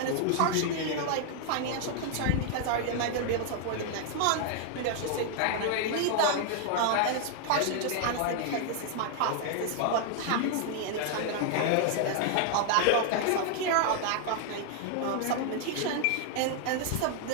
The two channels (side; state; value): both; different; correlation 0.00